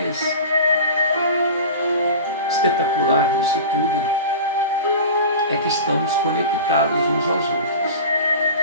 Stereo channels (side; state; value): both; inverted; correlation -0.33